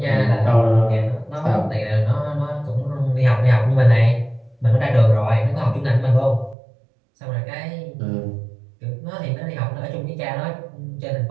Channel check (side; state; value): left; drops out; at 6.6 s